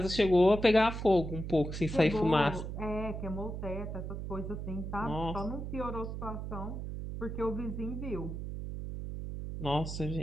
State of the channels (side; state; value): right; noise; hum, 6 dB below the sound